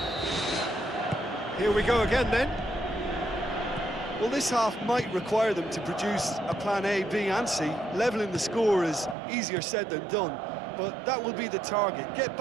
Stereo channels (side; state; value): left; drops out; at 9.2 s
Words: Here we go again, then. Well, this half might require them to produce a plan A, B and C. Levelling the score is easier said than done, but that will be the target. Get